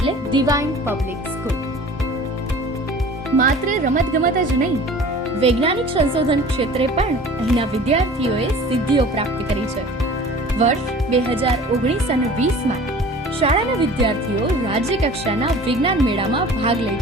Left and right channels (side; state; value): both; normal; correlation 0.44